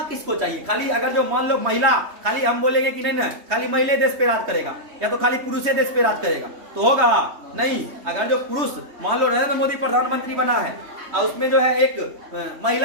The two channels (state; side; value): late; left; 3.2 ms